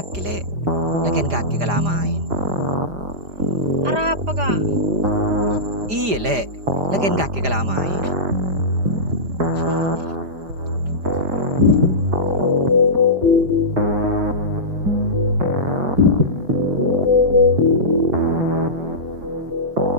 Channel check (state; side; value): late; left; 4.9 ms